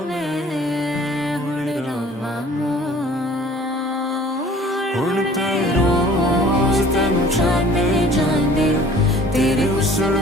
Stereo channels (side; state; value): both; normal; correlation 0.50